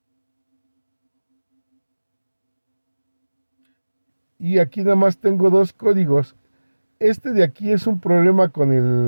Y aquí nada más tengo dos códigos. Este de aquí es un problema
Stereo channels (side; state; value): both; inverted; correlation -1.00